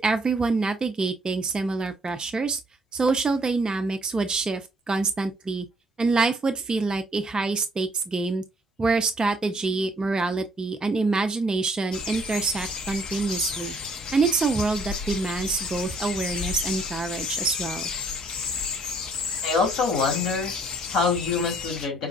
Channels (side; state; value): both; normal; correlation 0.64